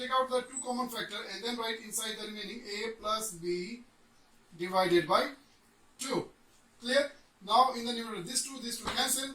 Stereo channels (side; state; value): both; identical; correlation 1.00